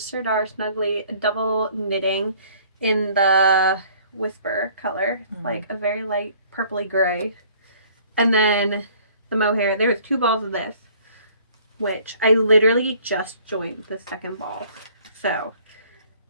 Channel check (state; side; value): inverted; both; correlation -0.56